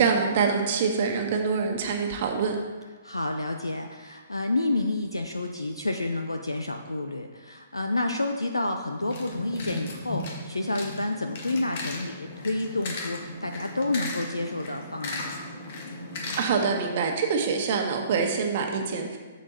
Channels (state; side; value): inverted; both; correlation -0.62